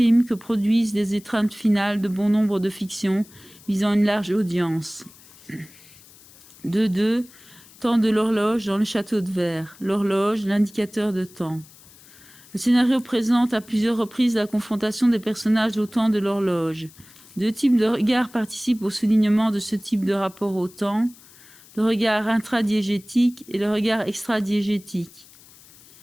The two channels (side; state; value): left; noise; hiss, 24 dB below the sound